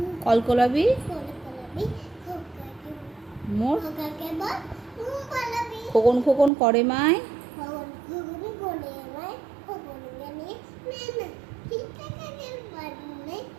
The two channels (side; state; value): left; drops out; at 6.5 s